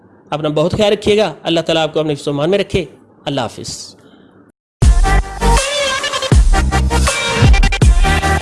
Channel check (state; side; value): identical; both; correlation 1.00